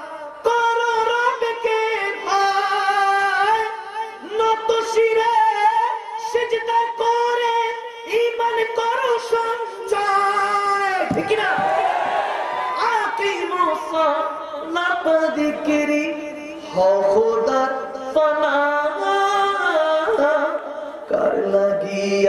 করো রবকে ভয়. নত শিরে সিজদা করে ঈমান করো সঞ্চয়. ঠিক না. আকিমুস সালাত যিকরি হও খোদার ফনা. কার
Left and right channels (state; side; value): identical; both; correlation 1.00